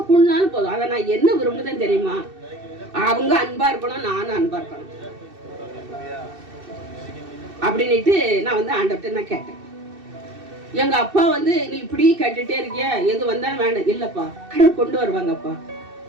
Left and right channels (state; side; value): late; left; 2.6 ms